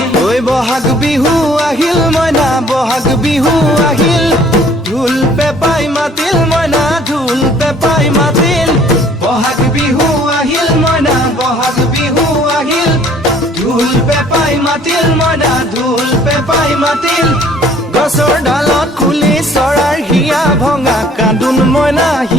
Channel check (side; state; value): both; normal; correlation 0.57